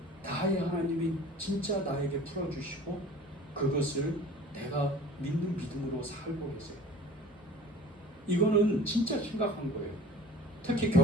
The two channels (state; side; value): normal; both; correlation 0.45